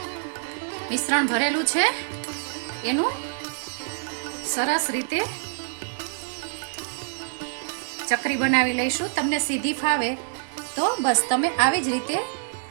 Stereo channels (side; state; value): left; silent; 61 dB below the other